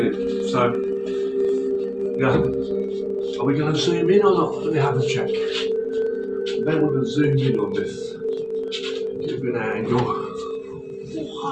it. So, yeah. Are we going to zoom in or not? Let me have a check. Then we're going to zoom in on this. Give it an angle.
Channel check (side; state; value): both; identical; correlation 1.00